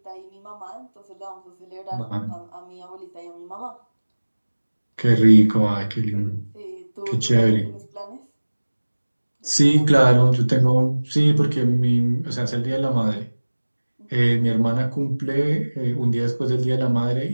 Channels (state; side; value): inverted; both; correlation -1.00